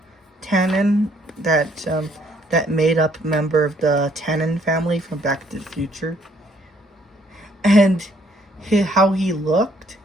Tannen, that made up member of the Tannen family from Back to the Future, and how he looked,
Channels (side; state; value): both; normal; correlation 0.66